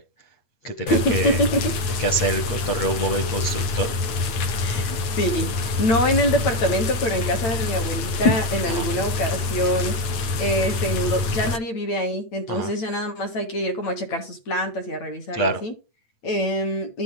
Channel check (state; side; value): late; right; 8.7 ms